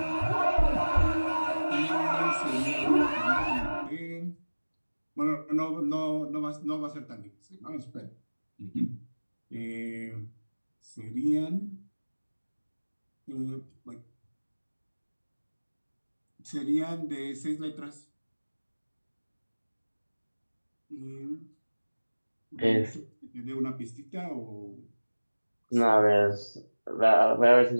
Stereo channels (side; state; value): both; inverted; correlation -1.00